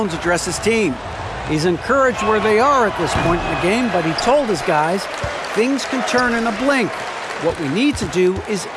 address his team. He's encouraged where they are at this point in the game, but he told his guys things can turn in a blink. What we need to do is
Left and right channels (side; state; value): both; identical; correlation 1.00